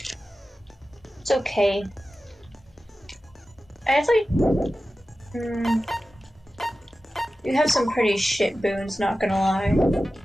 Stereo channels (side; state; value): both; normal; correlation 0.94